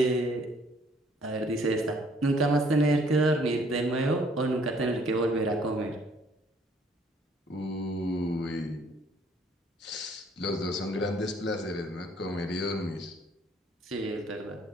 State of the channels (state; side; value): normal; both; correlation 0.62